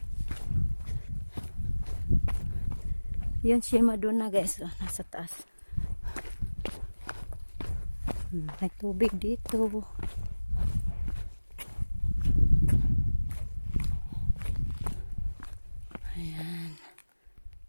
Yun si Madonna guys, oh, nasa taas. May tubig dito. Ayan.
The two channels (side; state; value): both; inverted; correlation -1.00